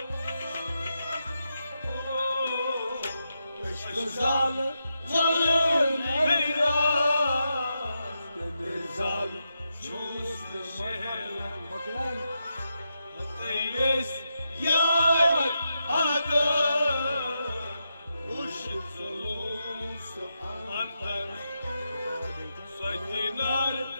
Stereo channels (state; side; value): inverted; both; correlation -0.86